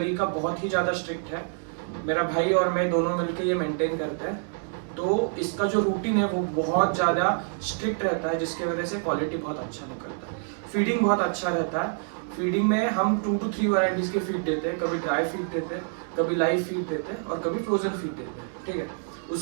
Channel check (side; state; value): left; silent; 60 dB below the other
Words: बहुत ही ज़्यादा स्ट्रिक्ट है। मेरा भाई और मैं दोनों मिलकर ये मेंटेन करते हैं। तो इसका जो रूटीन है वो बहुत ज़्यादा स्ट्रिक्ट रहता है, जिसकी वजह से क्वालिटी बहुत अच्छा निकलता है। फीडिंग बहुत अच्छा रहता है। फीडिंग में हम 2 to 3 वैरायटीज़ के फीड देते हैं। कभी ड्राई फीड देते हैं, कभी लाइव फीड देते हैं, और कभी फ्रोजन फीड देते हैं। ठीक है,